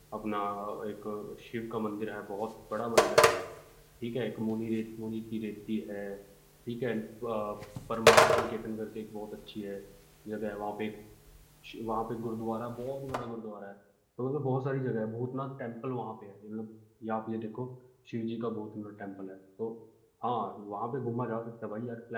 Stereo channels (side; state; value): both; identical; correlation 1.00